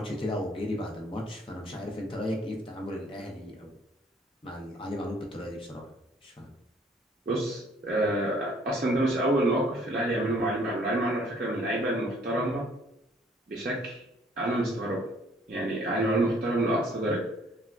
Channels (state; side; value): normal; both; correlation 0.60